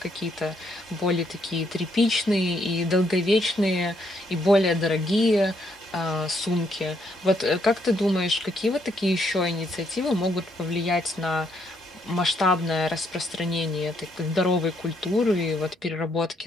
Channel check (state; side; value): normal; both; correlation 0.73